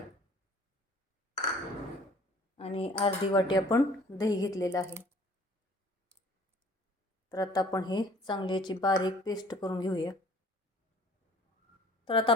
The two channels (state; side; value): normal; both; correlation 0.52